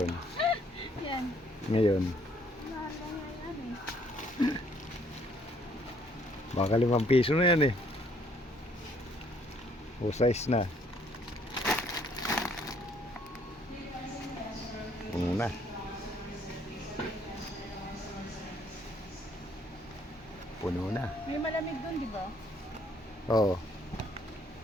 Yan. Ngayon. Mahal lang yan eh. Baka 5 piso na yan eh. O size na. Puno na. Puno na. May malamig doon, di ba? Oo.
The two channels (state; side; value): normal; both; correlation 0.64